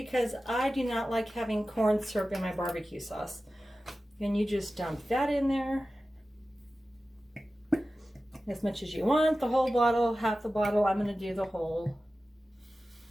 I do not like having corn syrup in my barbecue sauce. And you just dump that in there. As much as you want, the whole bottle, half the bottle. I'm going to do the whole.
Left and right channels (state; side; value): normal; both; correlation 0.95